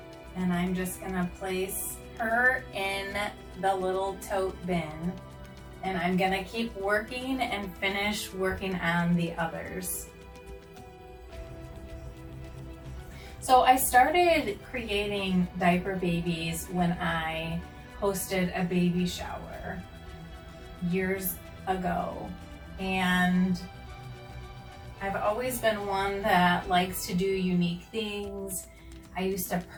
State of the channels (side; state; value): both; identical; correlation 1.00